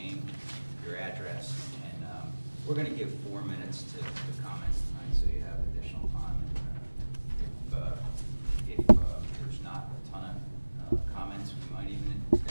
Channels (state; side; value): inverted; both; correlation -1.00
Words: your address, and we're going to give 4 minutes to comments tonight, so you have additional time. If there's not a ton of comments, we might even